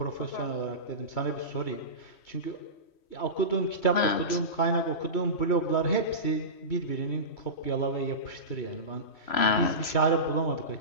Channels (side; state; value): right; late; 3.1 ms